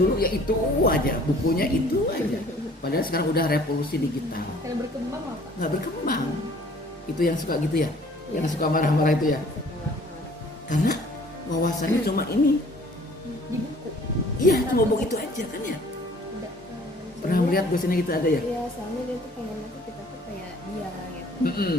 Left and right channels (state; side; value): normal; both; correlation 0.54